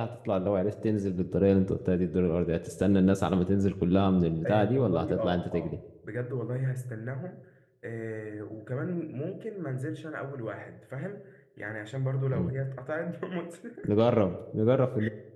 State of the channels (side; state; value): both; identical; correlation 1.00